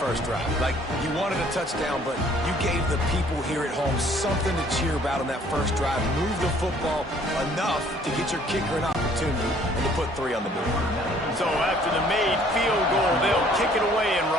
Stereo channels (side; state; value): both; normal; correlation 0.58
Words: drive. Like, you wanted a touchdown, but you gave the people here at home something to cheer about on that first drive. Move the football enough to get your kicker an opportunity and to put 3 on the board. So after the made field goal, they'll kick it away and